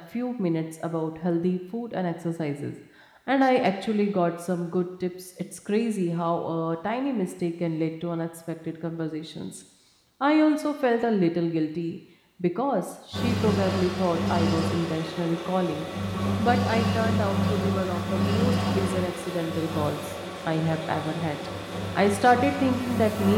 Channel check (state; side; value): identical; both; correlation 1.00